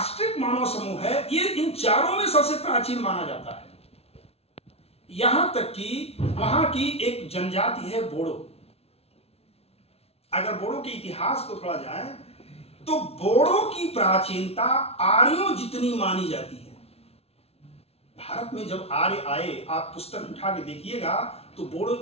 मानव समूह है, ये इन 4 में सबसे प्राचीन माना जाता है। यहां तक कि वहां की एक जनजाति है बोडो। अगर बोडो के इतिहास को थोड़ा जाए तो बोडो की प्राचीनता आर्यों जितनी मानी जाती है। भारत में जब आर्य आए, आप पुस्तक उठा के देखिएगा तो बोडो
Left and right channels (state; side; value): late; right; 0.30 ms